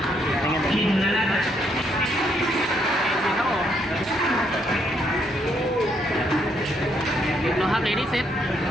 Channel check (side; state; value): both; normal; correlation 0.73